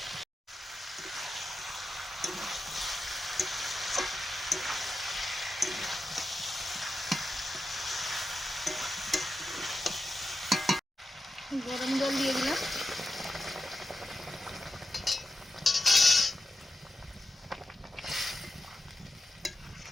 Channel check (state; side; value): normal; both; correlation 0.89